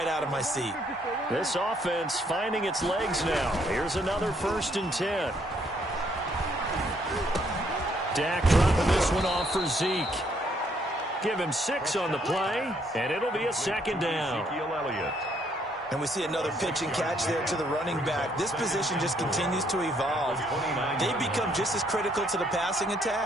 out of my seat. This offense finding its legs now. Here's another 1st and 10. Dak dropping this one off for Zeke. Give him 6 on the play, and it'll be a 2nd down. And we see another pitch and catch there to the running back. This position just continues to evolve. They become just as critical to the passing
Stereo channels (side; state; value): both; normal; correlation 0.69